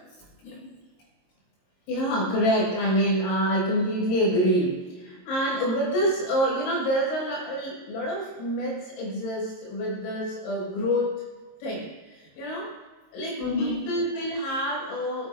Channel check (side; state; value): right; late; 22 ms